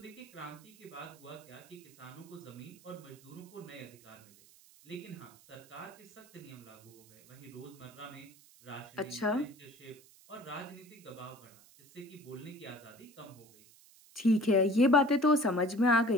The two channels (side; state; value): right; noise; hiss, 24 dB below the sound